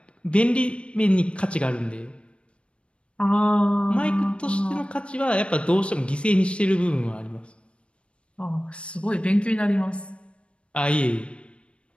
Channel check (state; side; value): late; right; 0.059 ms